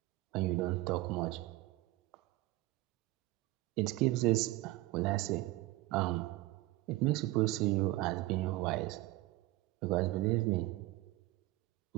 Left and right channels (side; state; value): left; quieter; 18.9 dB